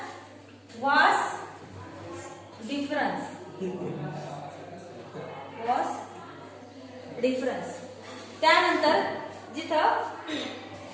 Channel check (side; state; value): both; identical; correlation 1.00